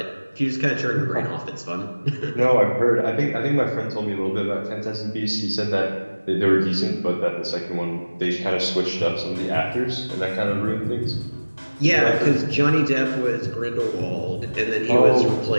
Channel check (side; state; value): both; inverted; correlation -1.00